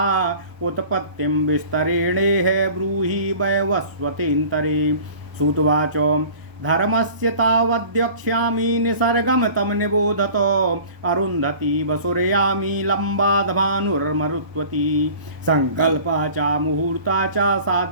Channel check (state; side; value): late; left; 1.0 ms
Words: उत्पत्तिं विस्तरेणेह ब्रूहि वैवस्वतेन्तरे। सूतवाच धर्मस्य तावद्यक्ष्यामि निसर्गं तं निबोधतो अरुन्धती वसुरयामि लम्बादभानुर्मरुत्वती संकल्पा च मुहूर्ता च